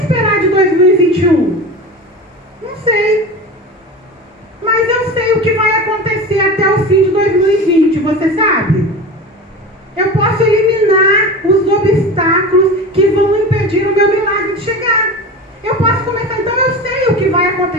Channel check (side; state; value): both; normal; correlation 0.30